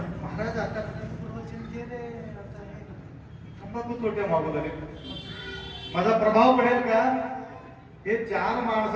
महाराज आता तंबाखू तोट्या मागू लागले, माझा प्रभाव पडेल का? हे चार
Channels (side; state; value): both; identical; correlation 1.00